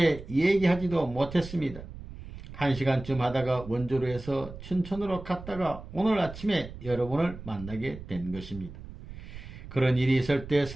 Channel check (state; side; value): noise; right; rumble, 13 dB below the sound